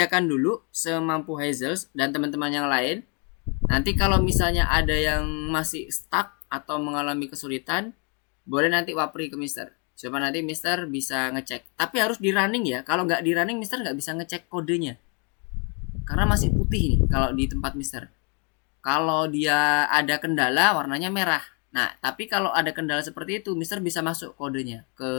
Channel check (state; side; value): quieter; right; 36.2 dB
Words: dulu semampu Hazel dan teman-teman yang lain. Nanti kalau misalnya ada yang masih stuck atau mengalami kesulitan, boleh nanti wapri ke Mister. Coba nanti Mister bisa ngecek. Tapi harus di running ya. Kalau nggak di running, Mister nggak bisa ngecek kodenya. Karena masih putih nih kalau di tempat Mister. Kalau dia ada kendala, warnanya merah. Nah, tapi kalau ada kendala seperti itu, Mister bisa masuk kodenya